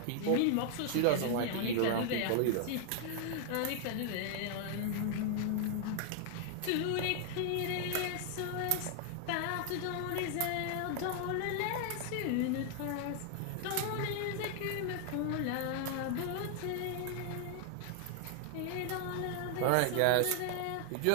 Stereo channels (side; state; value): both; different; correlation 0.00